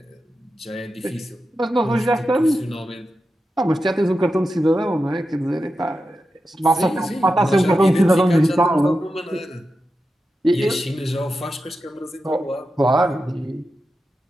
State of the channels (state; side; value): normal; both; correlation 0.90